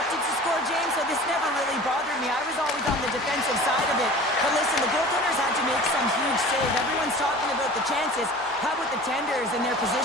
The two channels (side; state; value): right; noise; hum, 28 dB below the sound